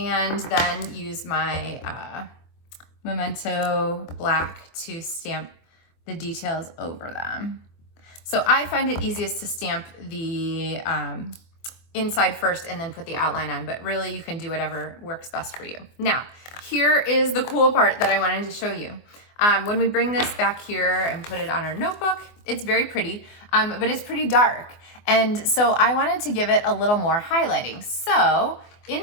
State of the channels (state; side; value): late; right; 24 ms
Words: then use my Memento black to stamp the details over them. So I find it easiest to stamp the inside first and then put the outline on, but really you can do whatever works best for you. Now, here is the cool part that I wanted to show you. When we bring this back here and put it on our notebook, it's very pretty, but it's pretty dark. And so I wanted to give it a little more highlighting. So